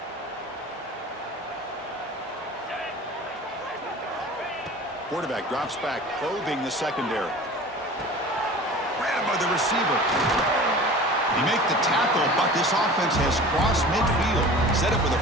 Quarterback drops back, probing the secondary. Grabbed by the receiver. He make the tackle, but this offense has crossed midfield. Set up with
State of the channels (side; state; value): both; normal; correlation 0.40